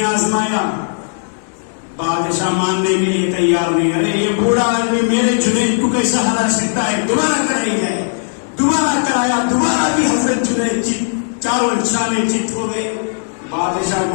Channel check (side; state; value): right; silent; digital silence